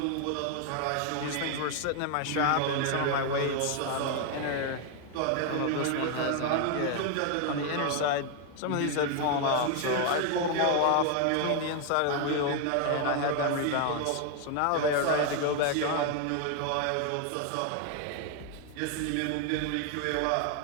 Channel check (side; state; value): both; different; correlation 0.00